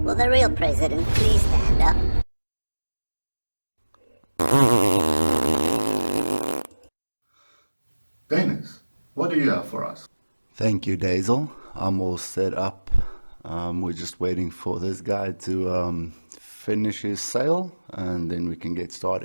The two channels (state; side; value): inverted; both; correlation -1.00